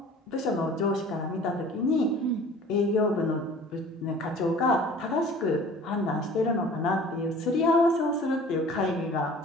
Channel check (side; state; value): both; normal; correlation 0.46